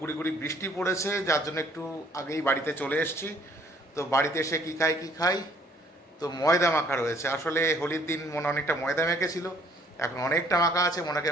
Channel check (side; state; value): both; normal; correlation 0.61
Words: গুড়ি গুড়ি বৃষ্টি পড়েছে, যার জন্য একটু আগেই বাড়িতে চলে এসেছি। তো বাড়িতে এসে কী খাই, তো ময়দা মাখা রয়েছে। আসলে হোলির দিন মনে অনেকটা ময়দা মেখেছিল, এখন অনেকটা মাখা আছে। মনেকে